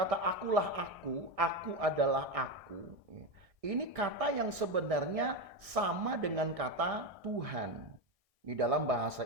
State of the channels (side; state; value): left; late; 1.6 ms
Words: akulah aku adalah aku. Ini kata yang sebenarnya sama dengan kata Tuhan di dalam bahasa